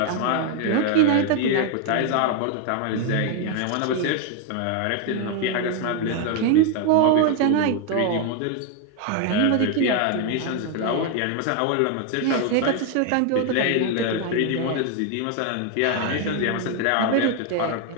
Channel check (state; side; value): different; both; correlation 0.01